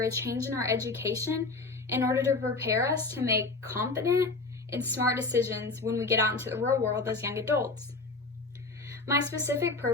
a change in our education in order to prepare us to make confident and smart decisions when we get out into the real world as young adults? My specific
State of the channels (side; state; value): right; quieter; 3.6 dB